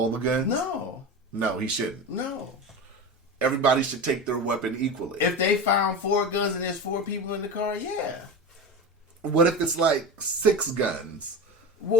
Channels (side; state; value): both; normal; correlation 0.26